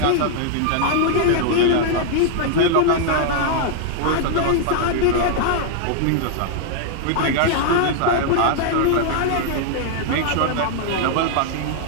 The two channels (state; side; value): different; both; correlation -0.01